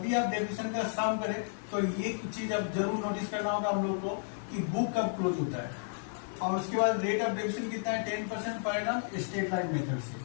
भी आप डेबिशन का सम करें तो ये चीज आप जरूर नोटिस करना होगा हम लोग को कि बुक कब क्लोज होता है। और उसके बाद रेट ऑफ डेबिशन कितना है 10% per annum straight line method से।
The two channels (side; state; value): right; silent; digital silence